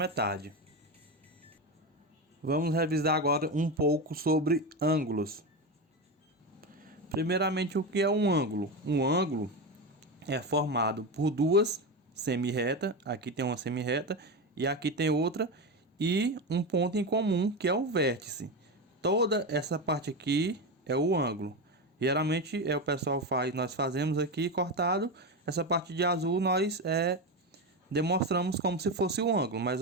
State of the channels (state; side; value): normal; both; correlation 0.17